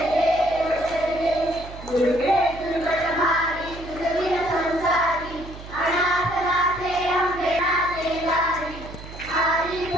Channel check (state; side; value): noise; right; hum, 14 dB below the sound